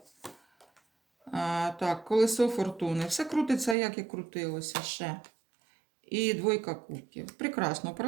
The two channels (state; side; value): drops out; left; at 3.8 s